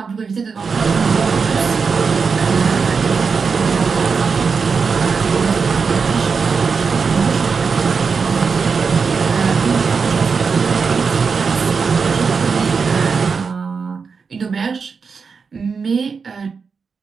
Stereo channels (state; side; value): quieter; left; 5.3 dB